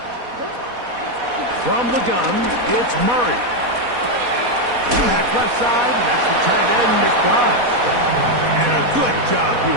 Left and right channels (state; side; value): late; left; 4.1 ms